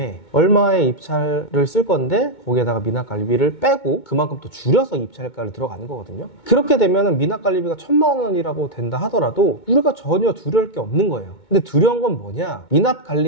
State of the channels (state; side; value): late; right; 2.2 ms